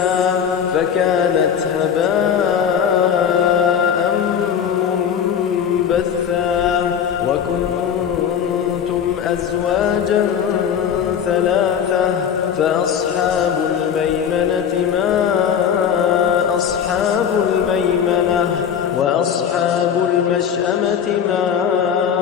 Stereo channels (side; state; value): right; quieter; 8.1 dB